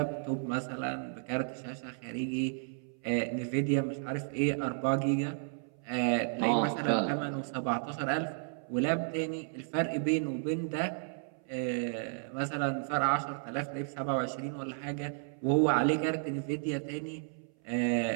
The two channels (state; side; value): silent; left; 56 dB below the other